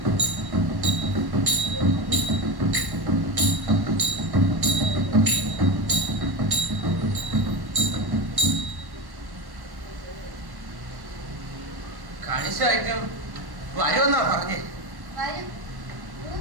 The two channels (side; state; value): left; late; 1.1 ms